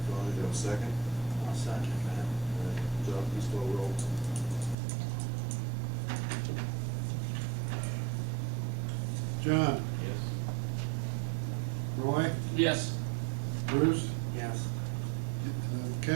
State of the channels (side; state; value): left; drops out; at 4.8 s